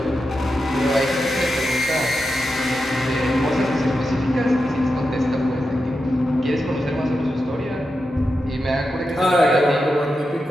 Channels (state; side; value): normal; both; correlation 0.88